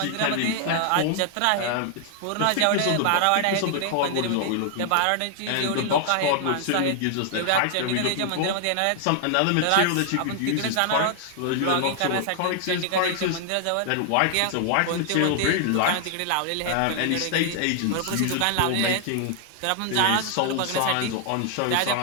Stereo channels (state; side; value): different; both; correlation 0.00